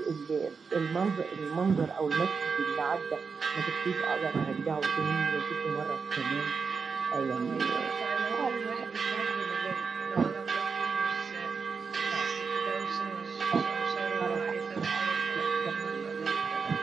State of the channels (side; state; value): left; quieter; 5.3 dB